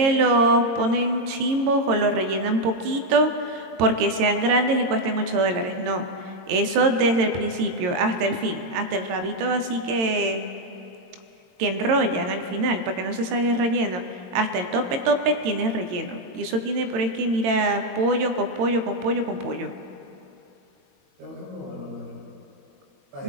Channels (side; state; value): left; late; 22 ms